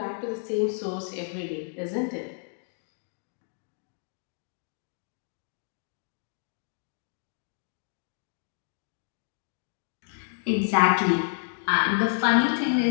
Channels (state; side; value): silent; right; digital silence